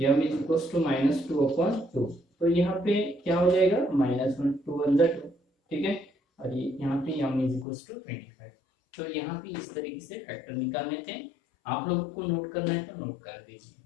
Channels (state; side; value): drops out; right; at 7.7 s